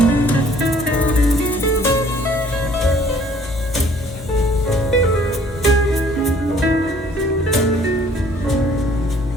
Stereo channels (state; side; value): normal; both; correlation 0.58